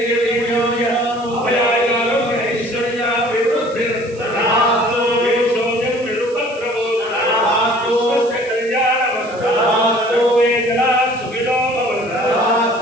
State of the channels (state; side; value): noise; right; hiss, 23 dB below the sound